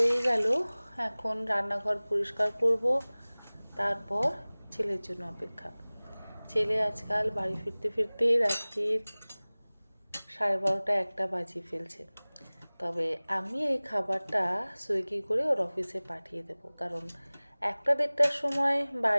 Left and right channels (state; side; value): inverted; both; correlation -1.00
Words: গেল। এখন রান্নাঘর পরিষ্কার করব, তারপর ছেলের জন্য অপেক্ষা। ছেলে আজকাল বাড়ি ফিরতে ফিরতে রাত্রির 12:30 একটা বাজিয়ে ফেলছে। তবে আমি এই খাবারটা সুইগি করে ওর অফিসে পাঠিয়ে দেব, কারণ 1-1:30টার সময়